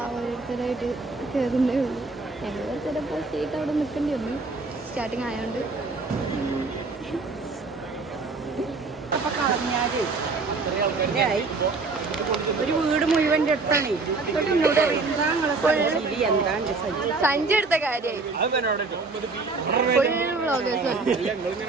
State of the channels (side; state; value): left; quieter; 3.9 dB